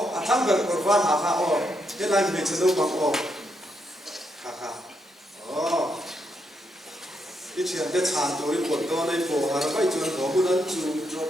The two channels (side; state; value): both; normal; correlation 0.79